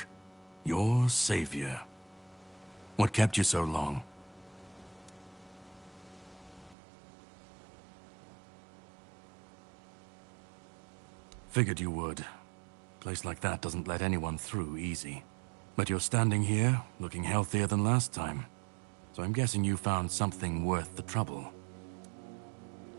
your savior. What kept you so long? Figured you would. A place like that doesn't let anyone through easy. But you're standing here, looking healthier than last time. So I'm guessing you found something worth the trouble.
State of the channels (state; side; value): drops out; left; at 6.8 s